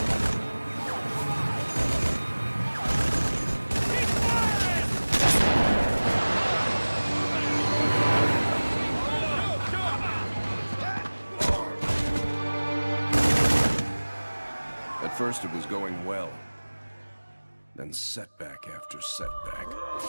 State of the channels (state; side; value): inverted; both; correlation -1.00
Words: At first it was going well. Then setback after setback.